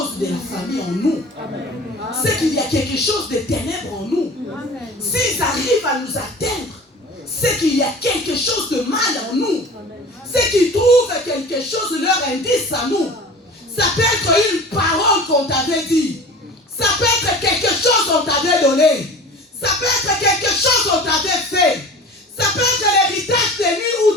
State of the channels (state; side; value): normal; both; correlation 0.39